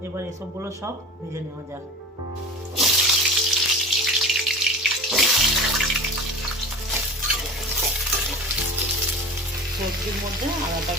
এবার এসবগুলো সব ভেজে নেওয়া যাক। সবজির মধ্যে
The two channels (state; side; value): normal; both; correlation 0.35